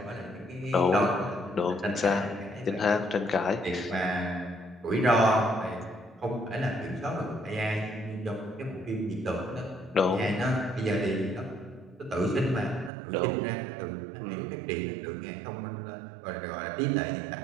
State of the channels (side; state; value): left; drops out; at 12.9 s